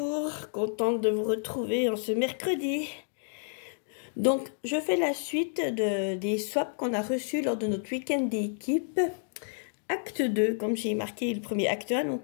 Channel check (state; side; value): silent; right; digital silence